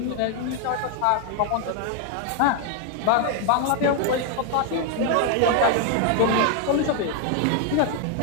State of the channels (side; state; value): both; different; correlation 0.00